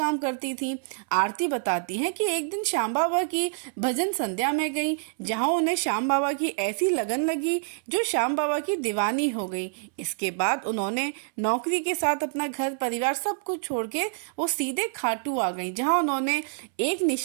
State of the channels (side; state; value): left; silent; 60 dB below the other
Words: करती थी। आरती बताती हैं कि एक दिन श्याम बाबा की भजन संध्या में गई, जहां उन्हें श्याम बाबा की ऐसी लगन लगी जो श्याम बाबा की दीवानी हो गई। इसके बाद उन्होंने नौकरी के साथ अपना घर परिवार सब कुछ छोड़ के वो सीधे खाटू आ गई, जहाँ उन्होंने एक